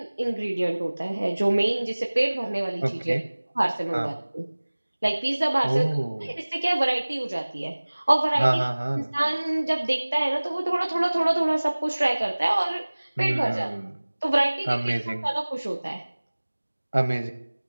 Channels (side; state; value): both; inverted; correlation -1.00